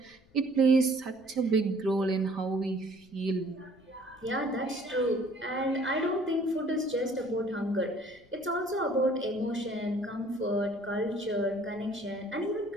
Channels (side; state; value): left; noise; rumble, 29 dB below the sound